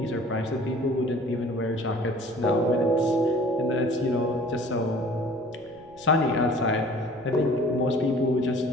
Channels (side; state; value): right; noise; rumble, 27 dB below the sound